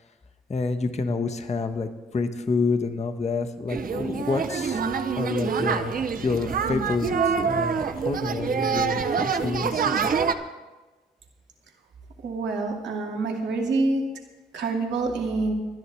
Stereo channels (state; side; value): normal; both; correlation 0.56